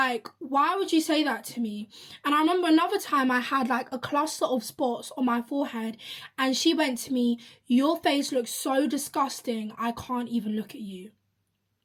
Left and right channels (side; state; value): both; identical; correlation 1.00